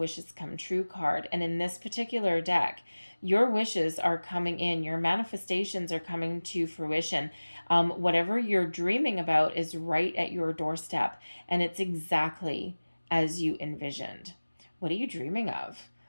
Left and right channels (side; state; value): both; inverted; correlation -1.00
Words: come true card. And in this particular deck, your wishes are coming in. Your manifestations are coming to fruition. Whatever you're dreaming about is right at your doorstep. And it's exactly as you envisioned. What are you dreaming of?